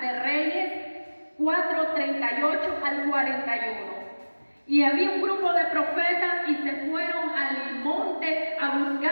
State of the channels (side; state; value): both; inverted; correlation -1.00